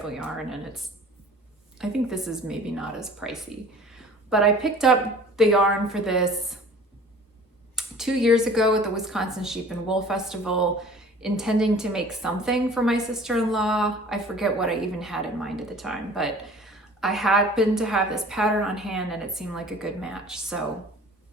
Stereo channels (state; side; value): normal; both; correlation 0.47